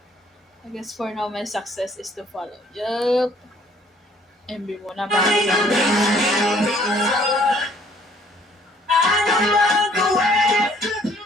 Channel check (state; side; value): normal; both; correlation 0.60